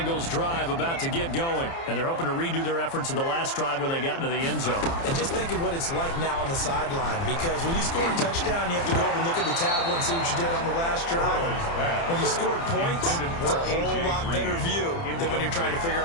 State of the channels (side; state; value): right; late; 30 ms